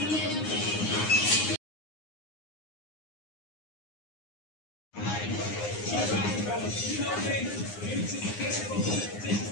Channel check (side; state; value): right; late; 9.7 ms